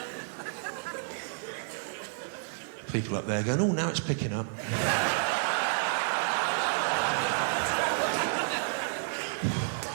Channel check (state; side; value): silent; left; 58 dB below the other